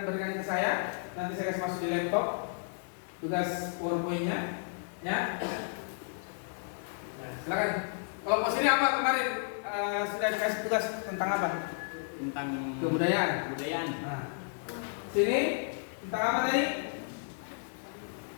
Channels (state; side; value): silent; right; digital silence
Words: berikan ke saya, nanti saya kasih masuk di laptop tugas PowerPoint-nya ya. Nah, silakan. Kelompok sini apa kemarin sudah dikasih tugas tentang apa? Tentang Kebudayaan. Nah, sini tentang apa tadi?